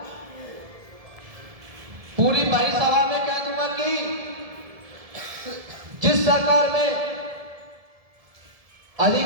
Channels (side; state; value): left; late; 1.7 ms